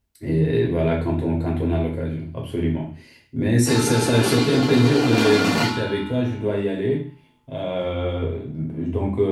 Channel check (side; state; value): both; identical; correlation 1.00